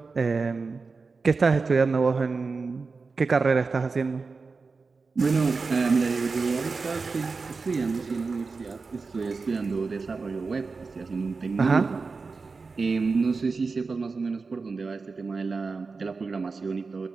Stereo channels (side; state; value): left; quieter; 4.4 dB